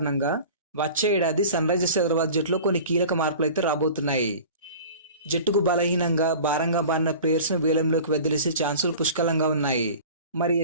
వచ్చే ఏడాది సన్ రైజర్స్ హైదరాబాద్ జట్టులో కొన్ని కీలక మార్పులు అయితే రాబోతున్నాయి. జట్టుకు బలహీనంగా భారంగా మారిన ప్లేయర్స్ను వేలంలోకి వదిలేసే ఛాన్సులు పుష్కలంగా ఉన్నాయి. మరి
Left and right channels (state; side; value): inverted; both; correlation -0.40